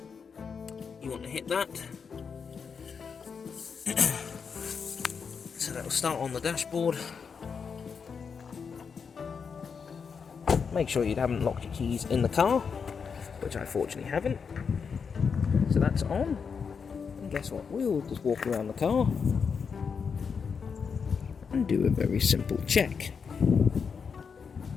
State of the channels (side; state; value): right; quieter; 6.0 dB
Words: You want to hit that. So that will start on the dashboard. Make sure you haven't locked your keys in the car, which I fortunately haven't. So that's on. And guess what? We'll just walk around the car and do a very simple check.